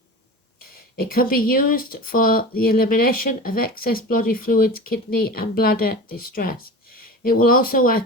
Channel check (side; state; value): both; normal; correlation 0.32